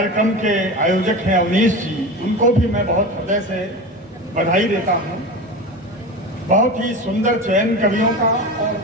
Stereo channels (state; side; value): normal; both; correlation 0.27